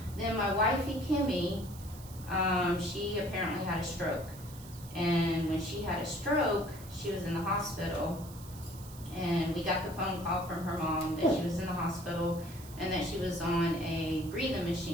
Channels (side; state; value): right; noise; hiss, 18 dB below the sound